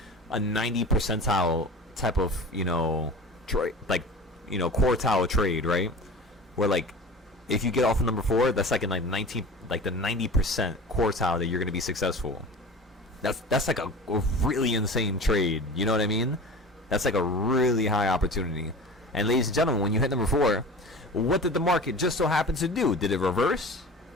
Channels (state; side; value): normal; both; correlation 0.37